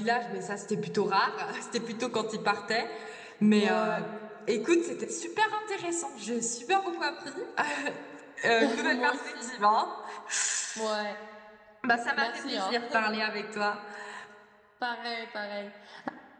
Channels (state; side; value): identical; both; correlation 1.00